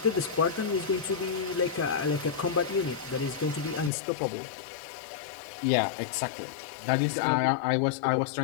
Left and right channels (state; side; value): drops out; right; at 3.9 s